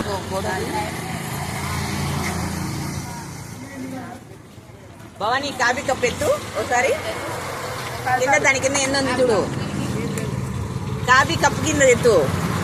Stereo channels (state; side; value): identical; both; correlation 1.00